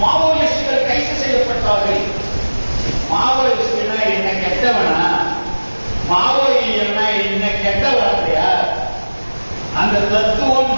கைது செய்யப்பட்டார்கள். மாவோயிஸ்டுனா என்ன கெட்டவனா, மாவோயிஸ்டுனா என்ன கெட்டவனா? அந்த தத்துவம்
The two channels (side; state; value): both; inverted; correlation -1.00